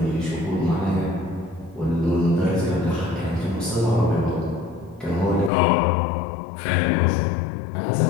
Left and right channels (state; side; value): drops out; right; at 5.5 s